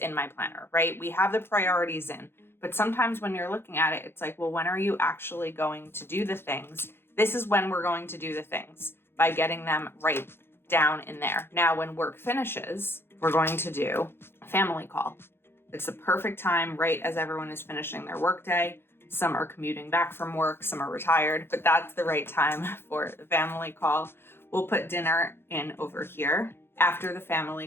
my planner, right? We have the priorities in, but sometimes when you're looking at it, it's like, well, when are you actually going to do the things? This is when we're going to do the things, by getting them right down in there. Now, when work finishes, we're going to do a family call. It's the perfect time, right as everyone is finishing their workday. Some are commuting back from work, some are retired, but that's the right time for the family call. We'll put dinner in over here. After the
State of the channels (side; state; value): right; late; 0.11 ms